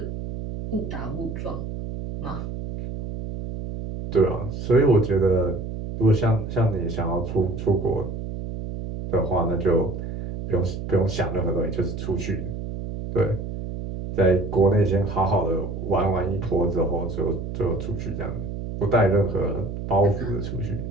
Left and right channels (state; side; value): noise; right; hum, 6 dB below the sound